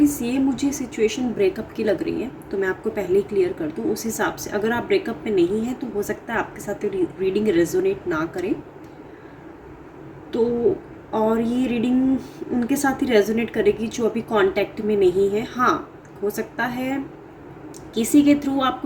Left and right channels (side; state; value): both; identical; correlation 1.00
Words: ये मुझे situation breakup की लग रही है, तो मैं आपको पहले ही क्लियर कर दूँ उस हिसाब से। अगर आप ब्रेकअप में नहीं हैं तो हो सकता है आपके साथ रीडिंग रेजोनेट ना करे, तो और ये रीडिंग उनके साथ ही रेजोनेट करेगी जो अभी कांटेक्ट में नहीं है। हाँ, हो सकता है किसी के थ्रू